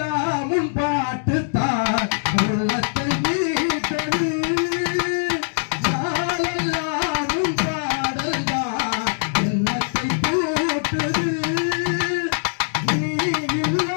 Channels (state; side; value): silent; right; digital silence